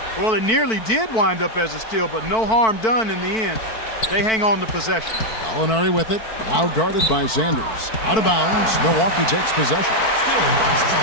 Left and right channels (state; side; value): late; right; 4.5 ms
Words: Well, it nearly did wind up as a steal, but no harm done in the end. They hang on to possession. Gallinari with it, now guarded by Sanders. Out of bounds, Milwaukee takes possession. Still Bucks ball.